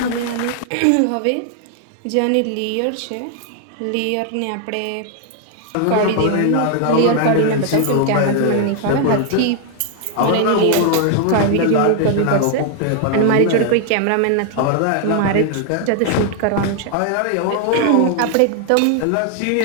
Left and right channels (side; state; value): both; different; correlation 0.00